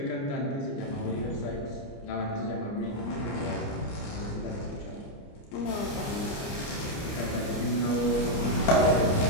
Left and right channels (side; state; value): right; late; 29 ms